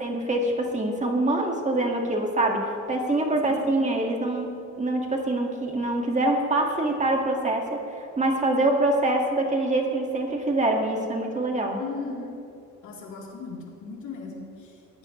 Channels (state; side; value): normal; both; correlation 0.38